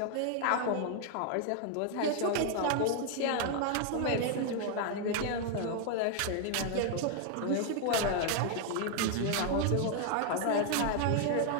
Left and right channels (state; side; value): different; both; correlation 0.00